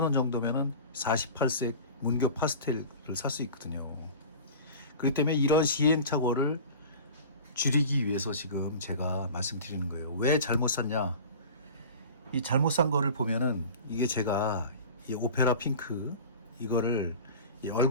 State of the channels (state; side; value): inverted; both; correlation -0.37